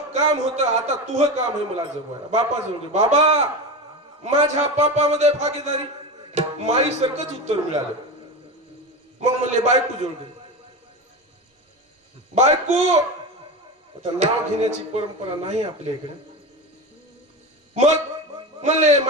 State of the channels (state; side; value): normal; both; correlation 0.23